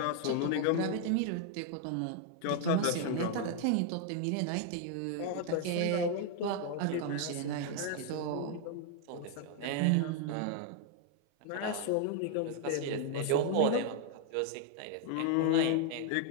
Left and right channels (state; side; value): different; both; correlation 0.00